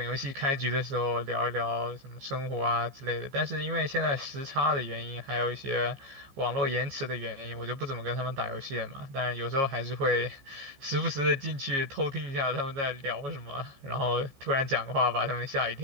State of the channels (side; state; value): left; late; 15 ms